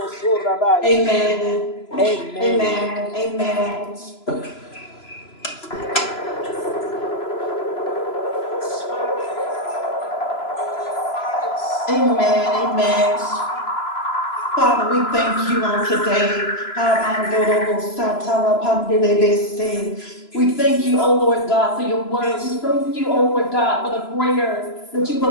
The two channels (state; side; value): late; right; 3.0 ms